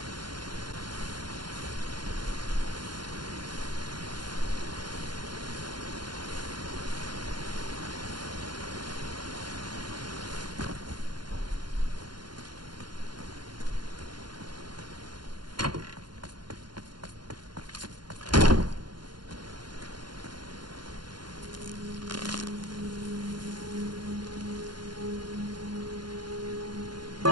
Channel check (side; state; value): left; late; 0.71 ms